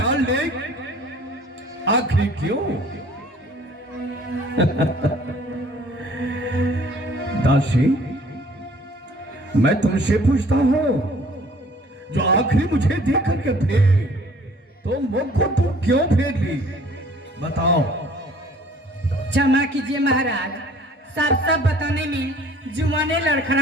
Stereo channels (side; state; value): both; normal; correlation 0.54